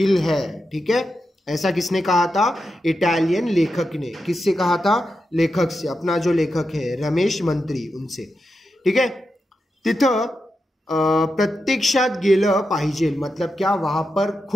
है, ठीक है। ऐसा किसने कहा था, इटालियन लेखक ने। किससे कहा था, लेखक से, अपना जो लेखक है रमेश मंत्री, उनसे, ठीक है। तिथं प्रत्यक्षात गेलं पाहिजे, मतलब क्या, वहाँ पर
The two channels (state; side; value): normal; both; correlation 0.88